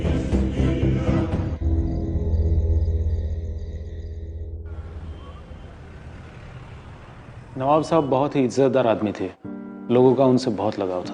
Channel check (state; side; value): identical; both; correlation 1.00